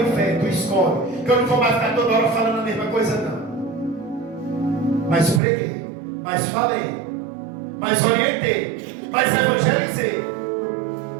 inferno, tu escolhe. Que eu não vou mais ficar toda hora falando a mesma coisa não. Mas preguei, mas falei, mas orientei, mas evangelizei.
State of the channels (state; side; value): drops out; left; at 5.4 s